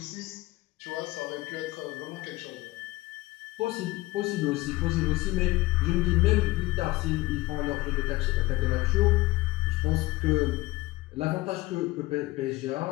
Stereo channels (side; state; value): right; quieter; 19.6 dB